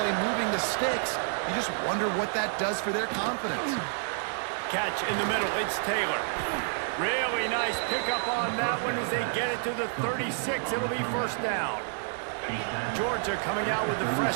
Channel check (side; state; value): left; silent; 59 dB below the other